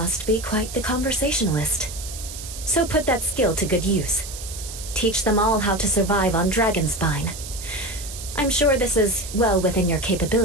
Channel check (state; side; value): noise; right; hiss, 11 dB below the sound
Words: be quite the conversationalist. So put that skill to good use. Teach them all how to survive on Dragonspine. I'm sure this is well within your